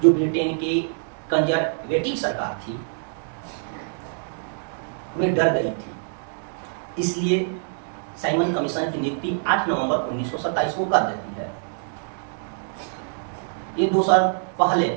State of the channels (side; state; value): left; silent; digital silence